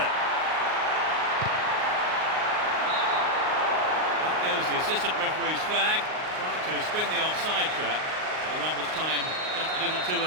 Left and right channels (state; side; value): late; left; 38 ms